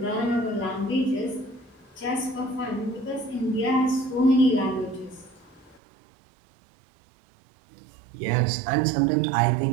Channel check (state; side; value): drops out; left; at 5.8 s